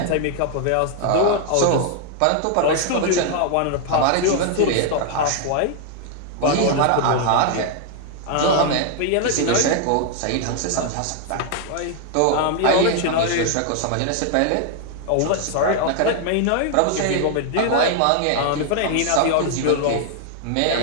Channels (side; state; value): both; different; correlation 0.00